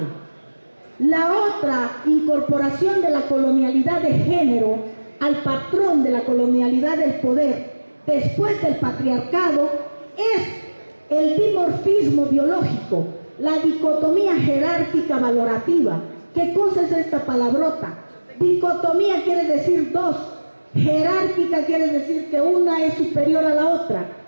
La otra incorporación de la colonialidad de género al patrón de la colonialidad del poder después del patriarcado es el dimorfismo biológico, la dicotomía jerárquica valorativa. ¿Qué cosa es esta palabrota? Dicotomía quiere decir dos, jerárquica quiere decir que una es superior a la otra,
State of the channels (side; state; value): both; inverted; correlation -1.00